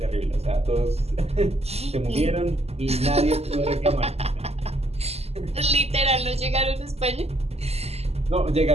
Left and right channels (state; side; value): late; left; 0.30 ms